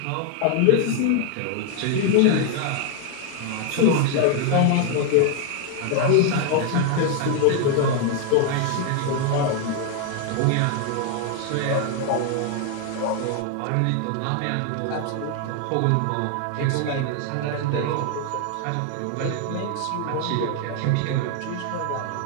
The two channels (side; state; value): both; different; correlation 0.00